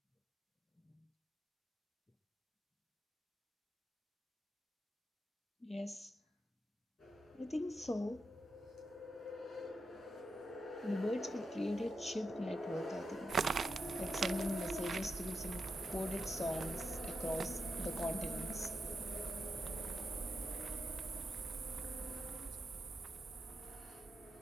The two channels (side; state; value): both; normal; correlation 0.87